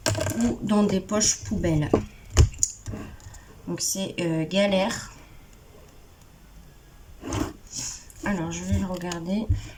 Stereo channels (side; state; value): both; identical; correlation 1.00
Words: ou dans des poches poubelles. Donc c'est galère. Alors je vais le regarder.